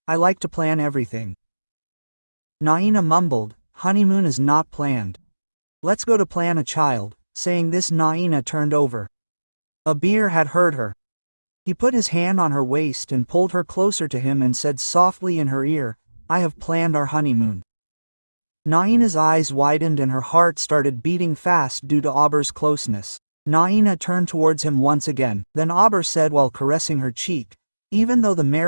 I like to plan everything." Naina mumbled, "Honeymoon is not planned. Let's go to plan a child." Saying this, Naina turned over. Abir had heard her. He put his hand on her waist and pulled her closer to him and said softly in her ear, "I have planned our honeymoon." Naina's eyes widened and her heart started beating fast due to Abir's closeness. Naina turned towards him once again. Then Abir said while caressing her cheek, "Even though the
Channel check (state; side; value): inverted; both; correlation -1.00